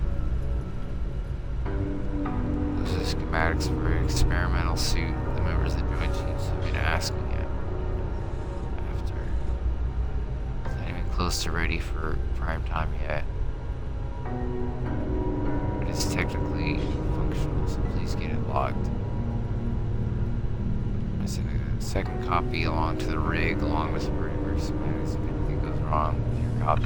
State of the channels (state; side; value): identical; both; correlation 1.00